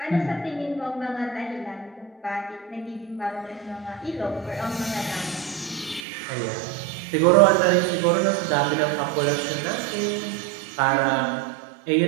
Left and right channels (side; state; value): left; drops out; at 6.1 s